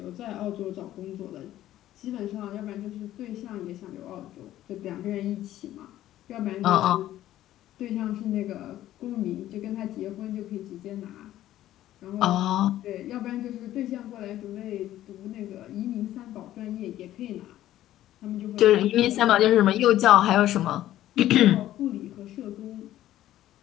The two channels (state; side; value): quieter; right; 13.5 dB